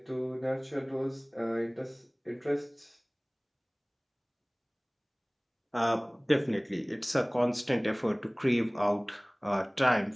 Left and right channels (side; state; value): both; identical; correlation 1.00